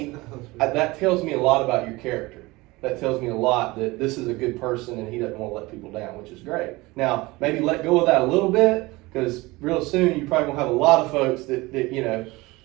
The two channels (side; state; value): left; quieter; 21.8 dB